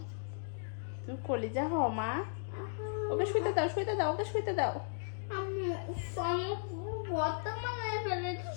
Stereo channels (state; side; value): silent; right; digital silence